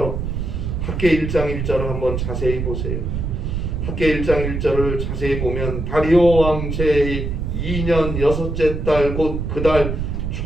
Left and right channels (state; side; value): noise; right; rumble, 3 dB below the sound